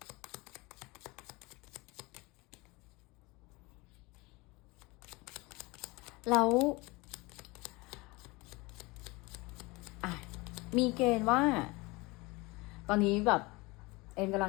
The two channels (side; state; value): right; quieter; 24.1 dB